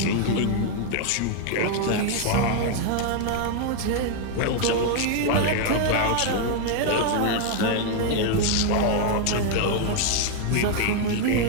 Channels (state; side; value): different; both; correlation 0.00